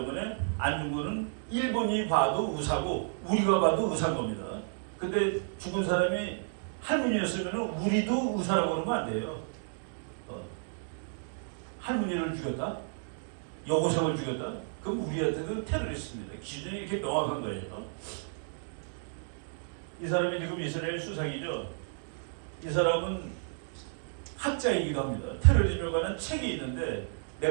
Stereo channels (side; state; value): left; silent; digital silence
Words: 안중근은 일본이 봐도 의사고 우리가 봐도 의사인 겁니다. 근데 죽은 사람이 할머니였으면 우리도 의사라고 그러면 안 돼요. 할머니를 죽였다? 여고생을 죽였다? 그럼 우리한테도 테러리스트입니다. 기준이 이렇게 명확한 거예요. 이 사람이 지금 이스라엘 수상이죠. 이 사람은 학자이기도 합니다. 테러리즘에 관한 책이 있는데